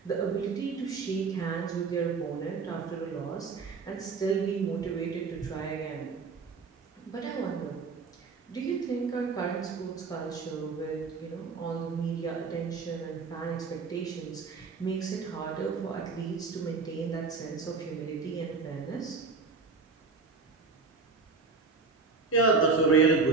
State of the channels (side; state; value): left; quieter; 4.6 dB